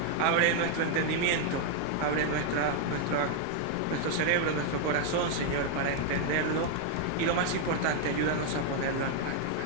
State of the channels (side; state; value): both; different; correlation 0.00